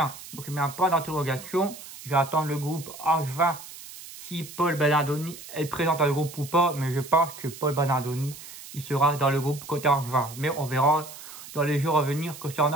Donc il met un point d'interrogation. Je vais attendre le groupe Angevin si Paul Bernardoni est présent dans le groupe ou pas. Mais je pense que Paul Bernardoni, il sera dans le groupe côté Angevin. Mais on verra dans les jours à venir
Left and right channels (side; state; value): right; noise; hiss, 15 dB below the sound